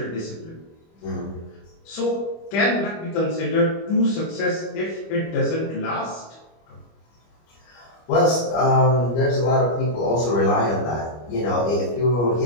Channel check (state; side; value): late; right; 25 ms